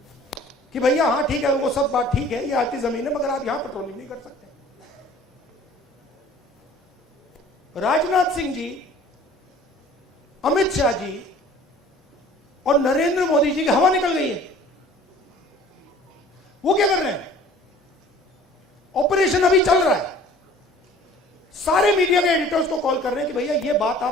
कि भैया हाँ ठीक है, वो सब बात ठीक है, ये आपकी जमीन है, मगर आप यहां पेट्रोलिंग नहीं कर सकते। राजनाथ सिंह जी अमित शाह जी और नरेंद्र मोदी जी की हवा निकल गई है। वो क्या कर रहे हैं? ऑपरेशन अभी चल रहा है। सारे मीडिया के एडिटर्स को कॉल कर रहे हैं कि भैया ये बात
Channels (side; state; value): both; normal; correlation 0.49